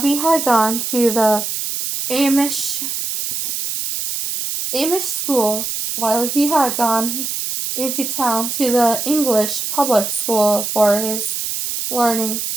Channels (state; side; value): noise; right; hiss, 3 dB below the sound